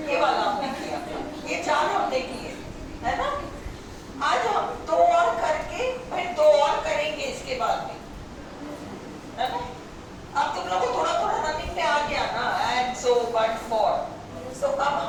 वाला हमने किया, ये 4 हमने किए, है ना। आज हम 2 और करके फिर 2 और करेंगे इसके बाद में, है ना। अब तुम लोगों को थोड़ा थोड़ा रनिंग में आ गया ना, एंड सो बट फॉर, सो अब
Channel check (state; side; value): identical; both; correlation 1.00